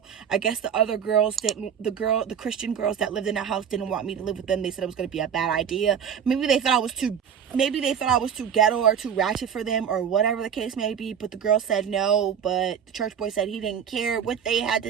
I guess the other girls didn't, the Christian girls that lived in the house didn't want me to live with them. They said it was going to be a bad idea. Maybe they thought I was too ghetto or too ratchet for them, or whatever the case may be. But the girls said no, but the church boy said he didn't care what they had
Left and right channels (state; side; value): quieter; left; 7.9 dB